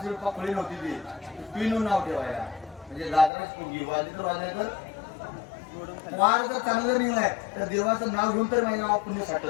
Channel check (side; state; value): right; drops out; at 3.3 s